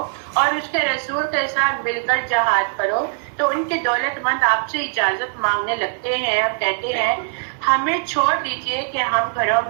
اور اس کے رسول کے ساتھ مل کر جہاد کرو تو ان کے دولت مند آپ سے اجازت مانگنے لگتے ہیں اور کہتے ہیں ہمیں چھوڑ دیجئے کہ ہم گھروں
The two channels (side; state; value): left; silent; digital silence